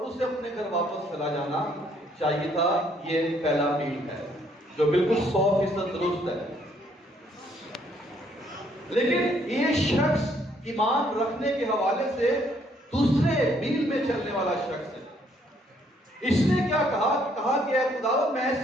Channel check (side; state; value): both; normal; correlation 0.67